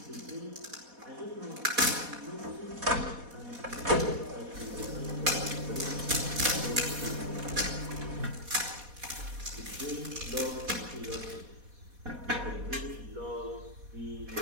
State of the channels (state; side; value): late; left; 4.2 ms